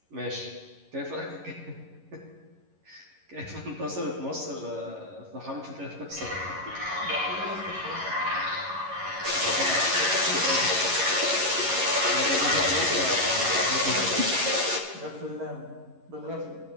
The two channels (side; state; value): left; late; 11 ms